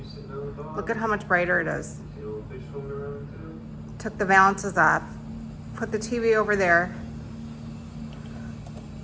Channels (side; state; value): both; identical; correlation 1.00